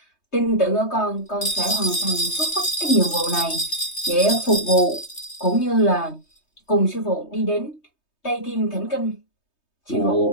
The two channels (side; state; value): right; late; 3.2 ms